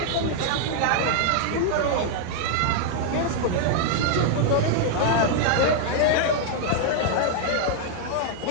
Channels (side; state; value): both; different; correlation 0.00